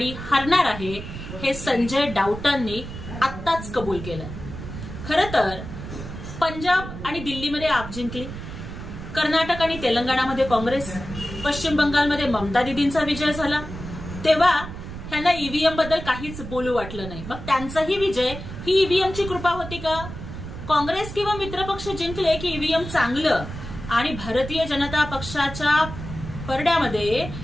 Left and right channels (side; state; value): right; noise; rumble, 10 dB below the sound